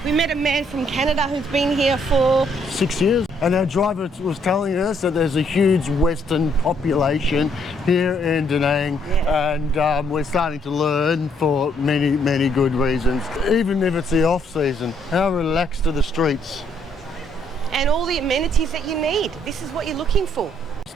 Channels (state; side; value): normal; both; correlation 0.69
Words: We met a man from Canada who's been here for 6 years, and our driver was telling us that there's a huge Western population here in Da Nang, and we're starting to learn for many, many good reasons. Even if it's the off season, how relaxed are the streets? and all the amenities that you need. This is what you're looking for.